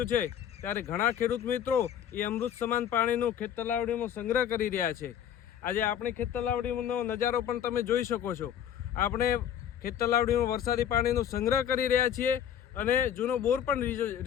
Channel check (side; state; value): right; quieter; 9.5 dB